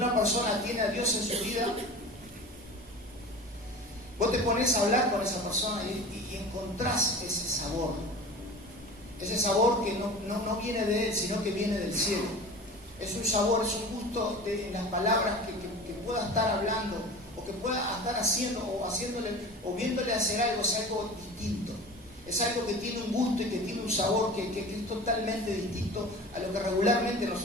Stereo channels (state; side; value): normal; both; correlation 0.36